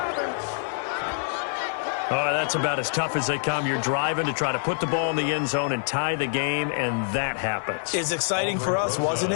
Oh, that's about as tough as they come. You're driving to try to put the ball in the end zone and tie the game, and that happens. It's exciting for us, wasn't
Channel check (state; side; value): silent; right; 61 dB below the other